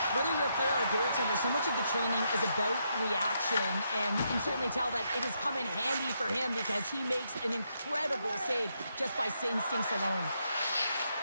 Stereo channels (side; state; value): both; inverted; correlation -0.79